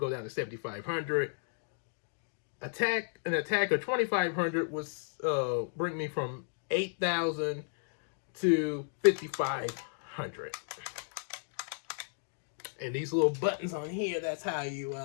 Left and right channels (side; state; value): right; silent; digital silence